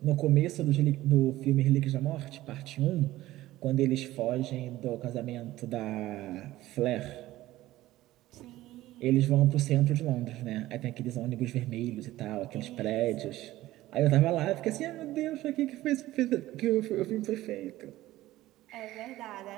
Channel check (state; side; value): quieter; left; 16.1 dB